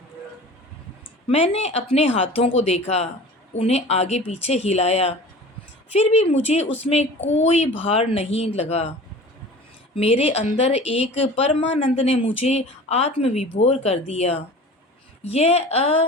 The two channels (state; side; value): normal; both; correlation 0.40